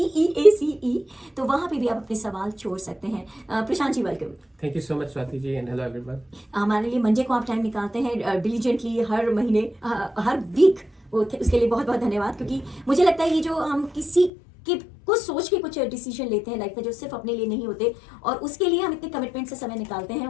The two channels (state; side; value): drops out; right; at 14.3 s